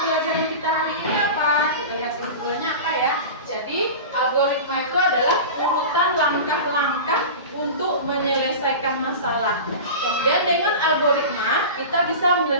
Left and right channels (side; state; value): both; inverted; correlation -0.30